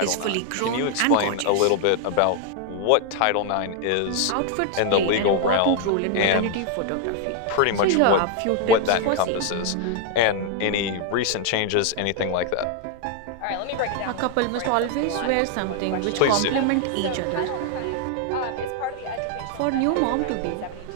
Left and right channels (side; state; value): both; different; correlation 0.00